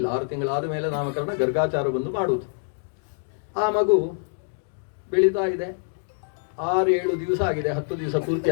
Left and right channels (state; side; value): silent; right; digital silence